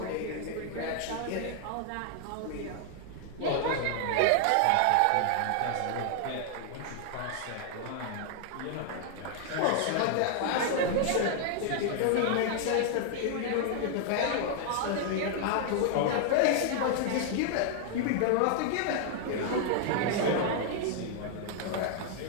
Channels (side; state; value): both; different; correlation 0.00